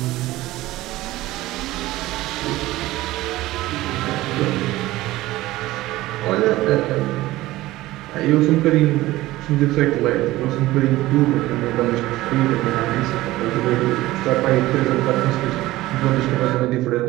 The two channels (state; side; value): quieter; left; 17.3 dB